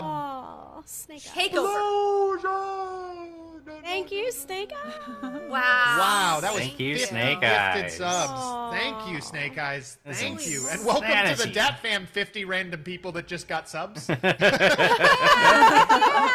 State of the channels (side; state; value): both; identical; correlation 1.00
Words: Oh, Snake Eyes. Takeover. Thank you, Snake Eyes. Wow. Wow, that was Thank you, 50 Snake gifted Eyes. subs. Aw. Thank you, Snake Eyes. This Thank is you. And welcome to the insanity. Dat Fam 50 random people that just got subs. Oh,